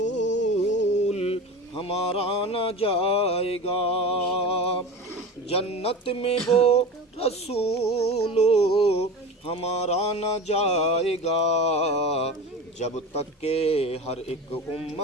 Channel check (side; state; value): both; normal; correlation 0.30